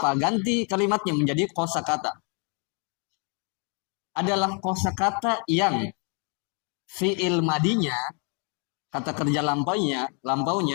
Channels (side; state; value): right; quieter; 37.9 dB